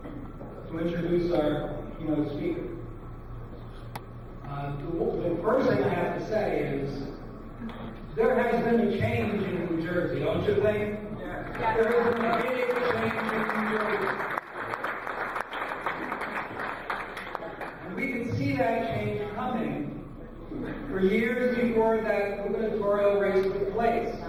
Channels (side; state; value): both; identical; correlation 1.00